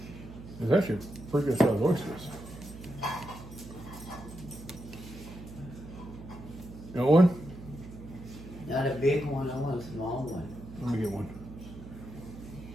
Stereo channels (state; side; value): noise; right; hum, 14 dB below the sound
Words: It's actually pretty good sized oysters. You want one? Not a big one, I want a small one. Let me get one.